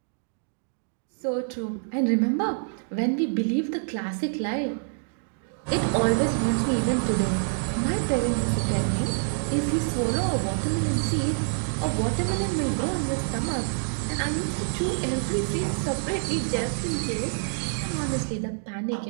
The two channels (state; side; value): silent; left; digital silence